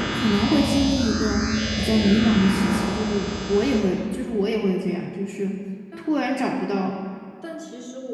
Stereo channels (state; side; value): identical; both; correlation 1.00